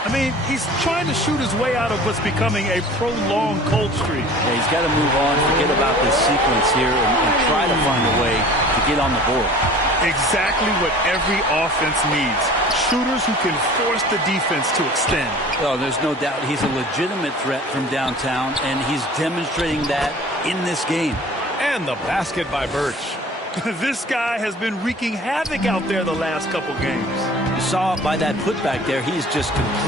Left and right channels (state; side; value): normal; both; correlation 0.45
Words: I mean, he's trying to shoot his way out of what's becoming a prolonged cold streak. Yeah, he's got to move on, forget about this sequence here, and try to find a way to get on the board. Exactly what every offense needs. Shooters who can force the defense to extend. Oh, there's no doubt he's a legitimate threat from downtown, and he's demonstrating that in this game. And the basket by Birch. This guy has been wreaking havoc out there the last couple games. You saw by that putback there, he's just